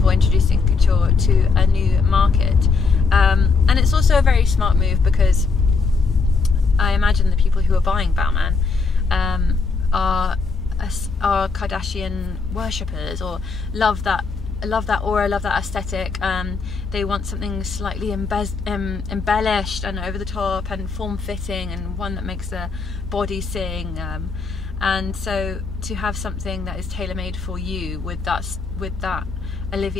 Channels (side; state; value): right; quieter; 4.6 dB